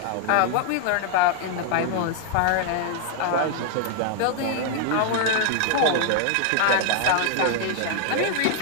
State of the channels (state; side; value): different; both; correlation 0.00